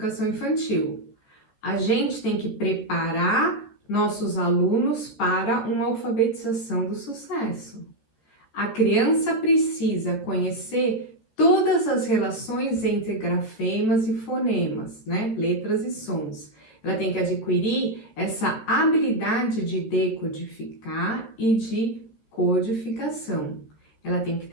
infantil. A gente tem que preparar nossos alunos para uma alfabetização do sucesso. A criança precisa conhecer todas as relações entre grafemas e fonemas, né? Letras e sons. Ela tem que adquirir essa habilidade de decodificar e de codificação. Ela tem que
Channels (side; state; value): right; late; 14 ms